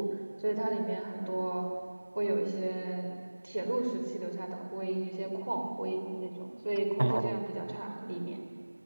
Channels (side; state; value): both; inverted; correlation -1.00